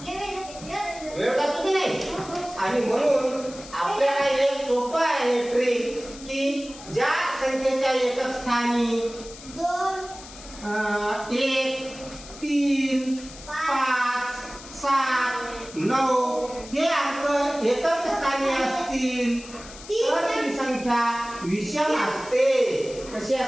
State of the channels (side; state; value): left; noise; hiss, 16 dB below the sound